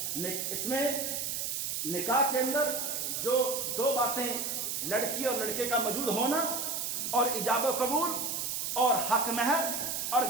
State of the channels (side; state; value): right; noise; hiss, 2 dB below the sound